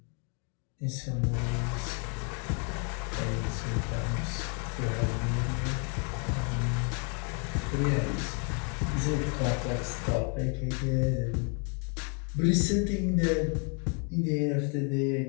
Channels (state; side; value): quieter; right; 38.5 dB